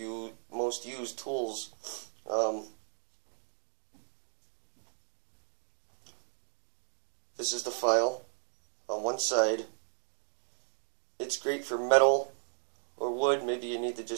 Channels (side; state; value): left; silent; digital silence